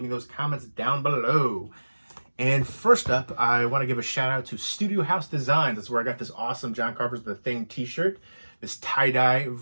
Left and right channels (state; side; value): inverted; both; correlation -1.00